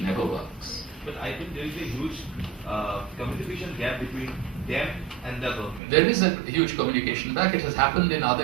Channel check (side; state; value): left; drops out; at 5.8 s